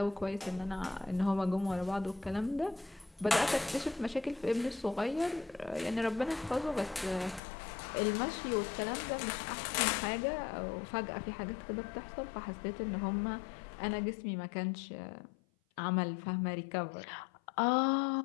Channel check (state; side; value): drops out; right; at 7.4 s